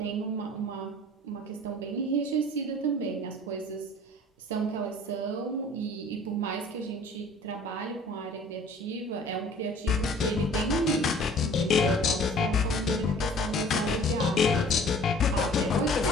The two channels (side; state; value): both; normal; correlation 0.49